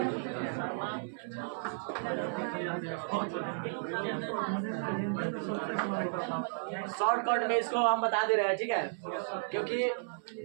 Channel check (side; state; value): left; silent; 55 dB below the other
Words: शॉर्टकट में इसको हम बता दे रहे हैं, ठीक है, क्योंकि